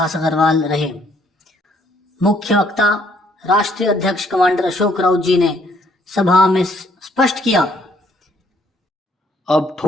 अग्रवाल रहे। मुख्य वक्ता राष्ट्रीय अध्यक्ष कमांडर अशोक राउत जी ने सभा में स्पष्ट किया, अब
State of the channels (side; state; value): both; normal; correlation 0.66